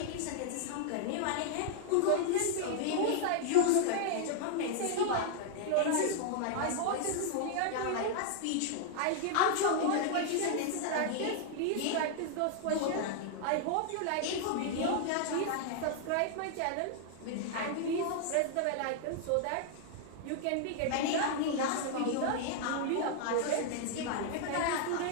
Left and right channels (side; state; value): both; different; correlation 0.00